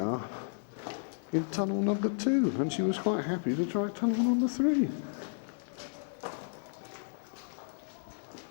in tunnel number 2, and she was quite happy to try tunnel number 3.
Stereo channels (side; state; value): right; silent; digital silence